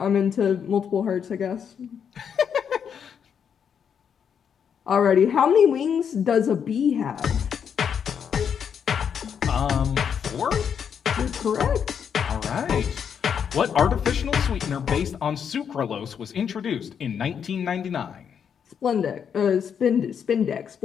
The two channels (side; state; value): right; quieter; 7.6 dB